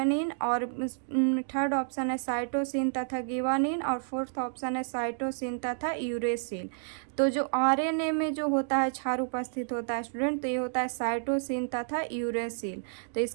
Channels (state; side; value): silent; left; digital silence